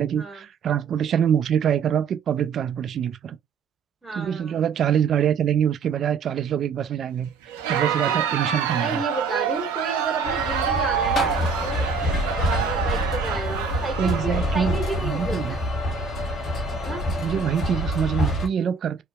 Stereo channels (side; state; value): left; quieter; 5.2 dB